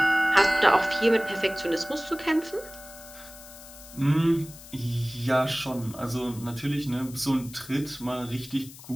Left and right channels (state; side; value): noise; left; hiss, 17 dB below the sound